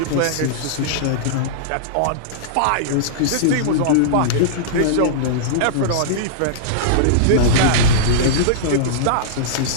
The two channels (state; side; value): different; both; correlation -0.02